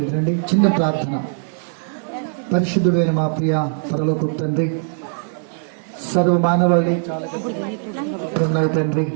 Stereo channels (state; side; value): silent; left; digital silence